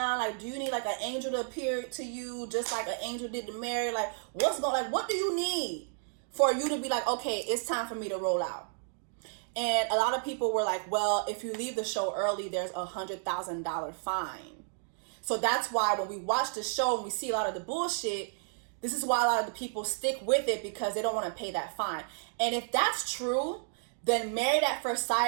Like, do you need like an angel to appear to you, just like an angel did to Mary? Like, what do you need for you to be like, okay, it's time for me to roll out? And a lot of people were like, well, if you leave the show early, there's $100,000 fine. So that's why when we watch the show and we see a lot of the bullshit, this is why a lot of the people stick with it, because they don't want to pay that fine. And if that's true, then Married at First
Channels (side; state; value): left; silent; digital silence